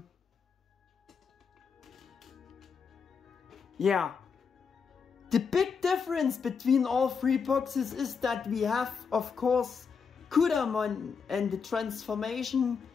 Yeah. The big difference between all three boxes is that we have, of course, Kudamon and the transformation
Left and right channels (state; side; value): quieter; right; 5.9 dB